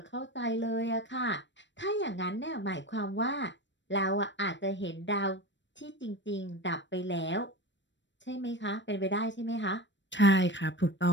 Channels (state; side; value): late; right; 0.53 ms